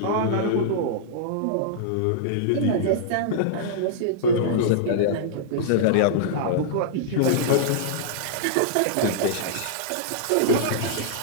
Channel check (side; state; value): both; different; correlation -0.02